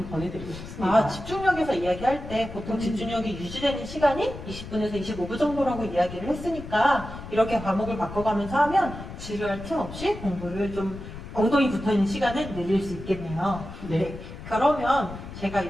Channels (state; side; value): noise; left; rumble, 11 dB below the sound